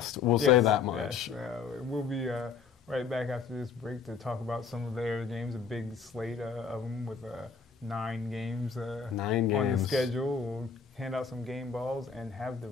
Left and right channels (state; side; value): quieter; right; 5.8 dB